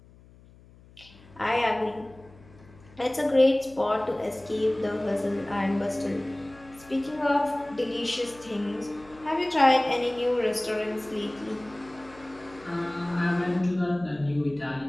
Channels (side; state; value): left; noise; hum, 24 dB below the sound